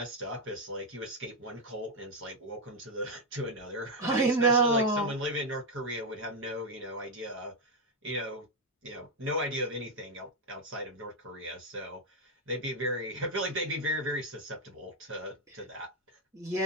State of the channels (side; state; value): both; normal; correlation 0.03